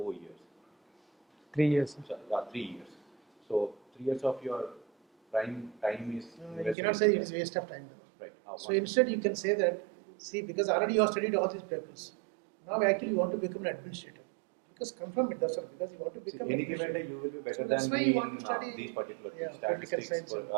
years. 3 years, sir. So, 3 years. So 3 years of your prime time is. You cannot say it is waste of time. Right. So instead, you can say that, see, because already you have studied all these papers. Now, actually, you want to become an administrator. Because confirm it, that's all. Because you want to become. Any given day, you will be better So that's than why me you want in to study, these particular yeah, things, political statistics,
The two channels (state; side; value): drops out; left; at 6.8 s